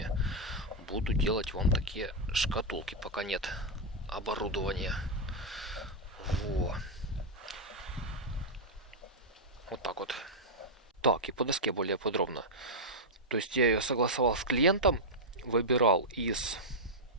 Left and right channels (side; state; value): both; normal; correlation -0.04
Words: Буду делать вам такие шкатулки, пока нет оборудования. Во. Вот так вот. Так, и по доске более подробно. То есть я ее согласовал с клиентом, выбирал из